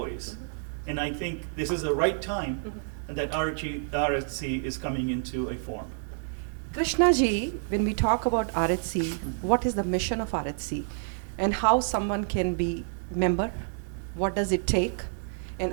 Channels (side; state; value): left; silent; digital silence